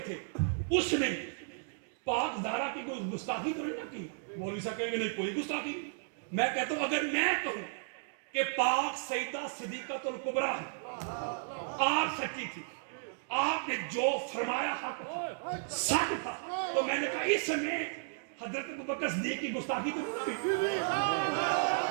تھے, اس نے پاک زہرا کی کوئی گستاخی تو نہیں نہ کی, مولوی صاحب کہیں گے نہیں کوئی گستاخی. میں کہتا ہوں اگر میں کہوں کہ پاک سیدہ صدیقۃ الکبریٰ آپ سچی تھی, آپ نے جو فرمایا حق سچ تھا, تو میں نے کہا اس میں حضرت ابوبکر صدیق کی گستاخی تو نہیں ہوئی.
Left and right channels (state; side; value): silent; left; digital silence